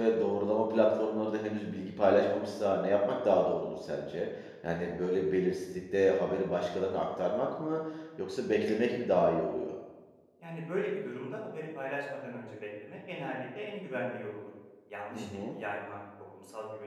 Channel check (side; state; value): both; identical; correlation 1.00